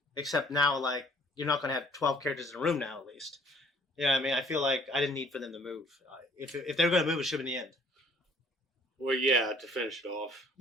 except now like you're not going to have 12 characters in a room now at least. Yeah, I mean I feel like I didn't need for them to move. If they were going to move, it should have been the end. Well, yeah, to finish it off.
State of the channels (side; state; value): both; normal; correlation 0.58